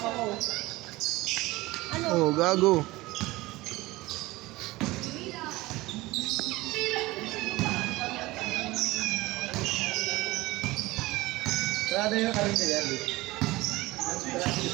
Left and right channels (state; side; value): quieter; left; 20.1 dB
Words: Oh, gago. Sarado yung karinyo yan eh.